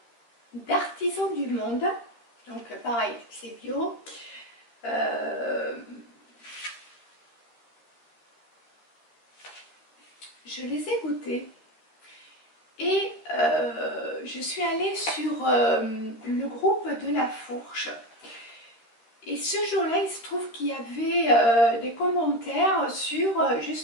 d'Artisans du Monde. Donc, pareil, c'est bio. Je les ai goûtés et je suis allée sur le groupe de la Fourche et ce jour-là il se trouve qu'il y avait des commentaires sur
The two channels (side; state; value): right; late; 13 ms